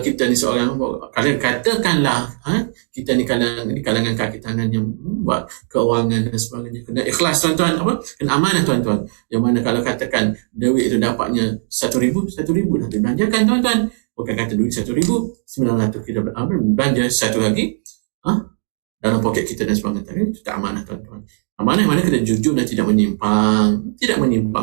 kita ni seorang, kalian katakanlah kita ni kalangan kaki tangan yang buat keuangan dan sebagainya, kena ikhlas tuan-tuan, apa? Kena amanah tuan-tuan. Yang mana kalau katakan duit itu dapatnya 1,000 dah dibelanjakan tuan-tuan. Bukan kata duit 1,900 kita belanja satu lagi dalam poket kita dan sebagainya. Itu tak amanah tuan-tuan. Amanah mana kena jujur dan tidak menyimpang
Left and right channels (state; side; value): silent; left; digital silence